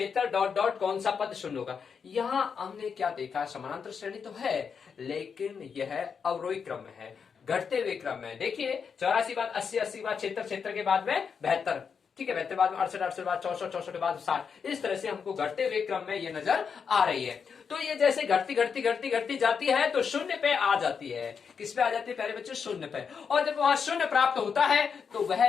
डॉट डॉट कौन सा पद शून्य होगा। यहाँ हमने क्या देखा, समानांतर श्रेणी तो है लेकिन यह अवरोही क्रम में है, घटते हुए क्रम में। देखिए 84 बाद 80, 80 बाद 76, 76 के बाद में 72, ठीक है, 72 बाद 68, 68 बाद 64, 64 के बाद 60, इस तरह से हमको घटते हुए क्रम में ये नजर आ रही है। तो ये जैसे घटती घटती घटती घटती जाती है तो शून्य पे आ जाती है। किस पे आ जाती है प्यारे बच्चों, शून्य पे। और जब वहां शून्य प्राप्त होता है तो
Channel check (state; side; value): quieter; right; 6.3 dB